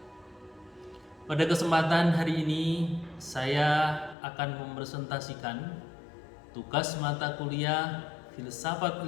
Pada kesempatan hari ini, saya akan mempresentasikan tugas mata kuliah Filsafat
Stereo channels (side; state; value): right; drops out; at 4.2 s